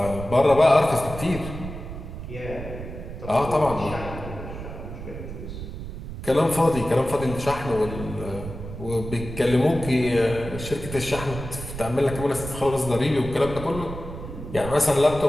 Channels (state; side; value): noise; right; rumble, 9 dB below the sound